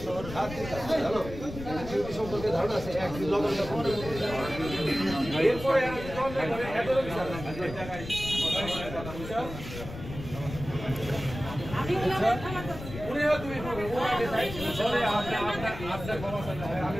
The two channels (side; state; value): left; noise; rumble, 10 dB below the sound